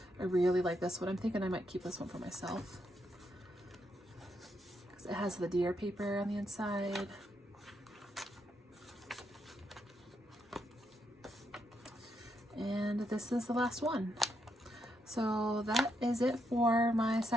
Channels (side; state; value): both; normal; correlation 0.80